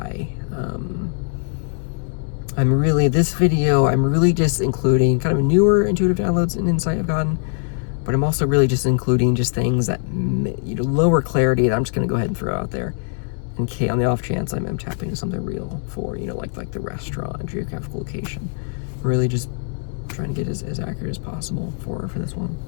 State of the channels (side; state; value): right; silent; 65 dB below the other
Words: I'm really just including kind of newer intuitive downloads and insight I've gotten, but I'm also really just including just things that lower clarity that I'm just going to go ahead and throw out there in case, on the off chance I'm tapping into something real for like the restaurant geographical location. Really just trying to get as accurate as possible for this one.